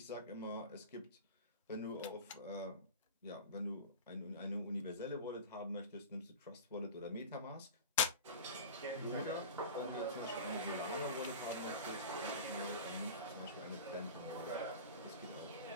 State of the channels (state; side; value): inverted; both; correlation -0.30